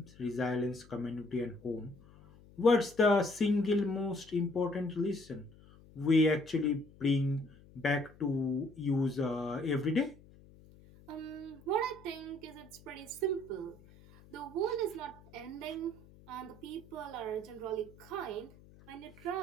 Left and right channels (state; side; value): noise; left; hum, 23 dB below the sound